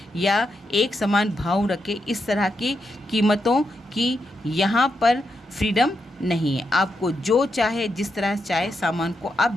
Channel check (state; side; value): normal; both; correlation 0.84